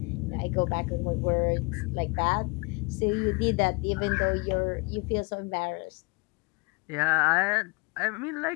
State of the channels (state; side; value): quieter; right; 27.6 dB